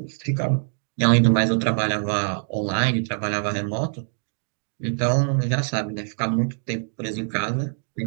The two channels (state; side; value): silent; left; digital silence